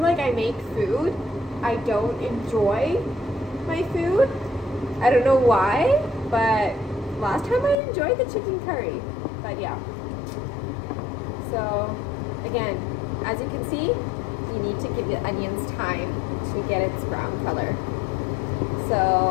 I make food, I don't enjoy my food. I don't know why, but last time I enjoyed the chicken curry. But yeah. So again, as you can see, you need to give the onions time to get its brown color.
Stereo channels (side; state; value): right; drops out; at 7.8 s